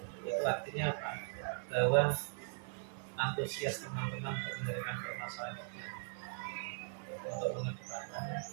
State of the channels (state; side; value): silent; left; digital silence